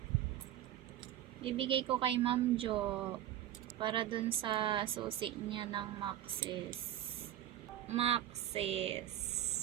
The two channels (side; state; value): left; quieter; 12.1 dB